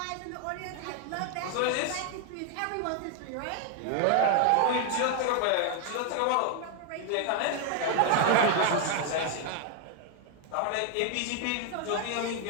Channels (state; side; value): different; both; correlation 0.01